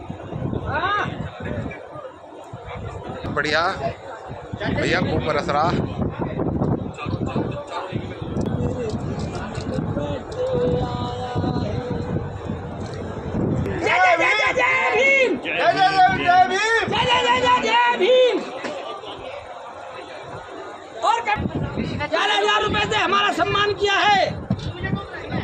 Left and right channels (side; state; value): both; identical; correlation 1.00